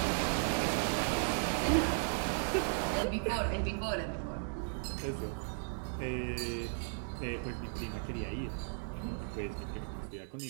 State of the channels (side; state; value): left; silent; digital silence